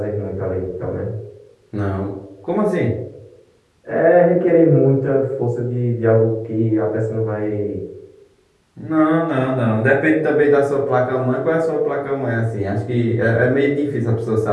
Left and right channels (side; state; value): both; identical; correlation 1.00